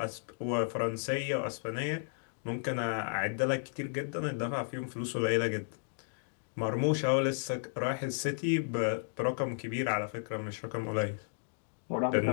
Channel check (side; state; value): right; silent; digital silence